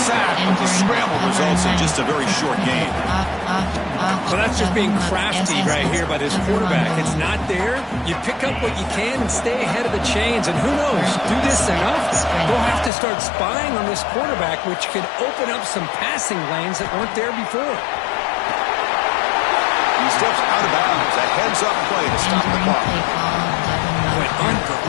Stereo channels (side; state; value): right; drops out; at 12.9 s